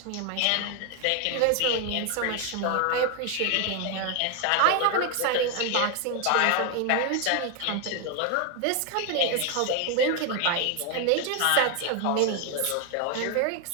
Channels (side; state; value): both; different; correlation 0.01